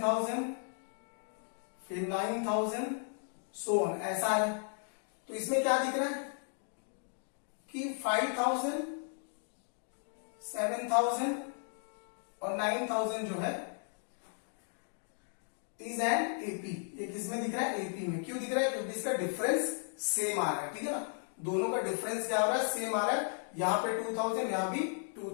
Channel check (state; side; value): silent; right; 54 dB below the other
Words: फिर 9000 सो ऑन, ऐसा है। तो इसमें क्या दिख रहा है कि 5000, 7000 और 9000 जो है इज एन एपी। ये किसमें दिख रहा है एपी में। क्यों दिख रहा है, क्योंकि इसका डिफरेंस सेम आ रहा है, ठीक है ना। दोनों का डिफरेंस क्या हो रहा है सेम आ रहा है। यहां पे 2000, यहां भी